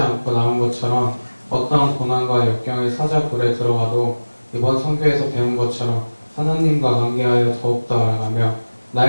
나온 것처럼 어떠한 고난과 역경의 사자굴에 들어가도 이번 선교에서 배운 것처럼 하나님과 관계하여 더욱더 알아가며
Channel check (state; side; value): inverted; both; correlation -1.00